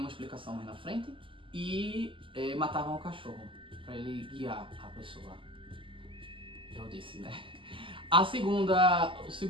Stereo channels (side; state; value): left; late; 0.25 ms